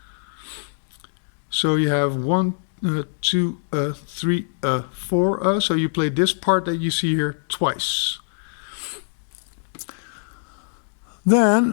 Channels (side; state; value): right; silent; digital silence